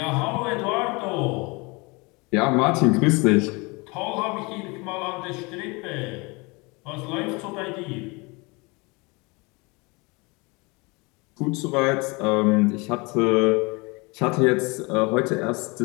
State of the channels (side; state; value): right; quieter; 27.2 dB